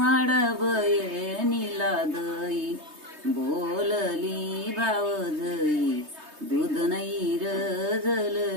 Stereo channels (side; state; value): left; late; 3.2 ms